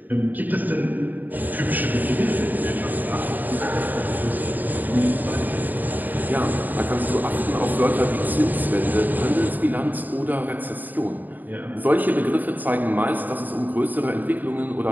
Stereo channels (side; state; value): left; late; 0.085 ms